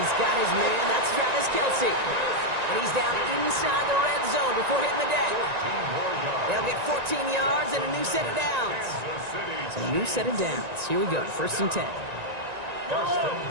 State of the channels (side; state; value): left; late; 1.9 ms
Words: got his man, that's Travis Kelce. And he's down inside the red zone before hitting the deck. They'll get 14 yards and a new set of downs. So a new set of downs. Here we go, 1st and 10. 1st and